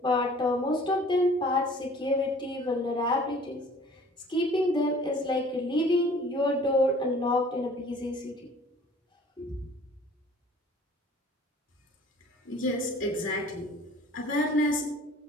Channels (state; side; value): normal; both; correlation 0.50